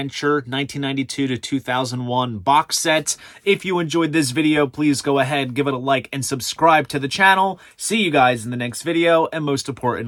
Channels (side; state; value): both; identical; correlation 1.00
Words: 1992 to 2001 box set. If you enjoyed this video, please go ahead, give it a like, and subscribe to the channel. See you guys in the next video, and most